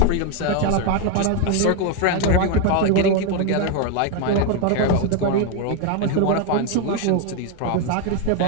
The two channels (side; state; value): both; different; correlation 0.01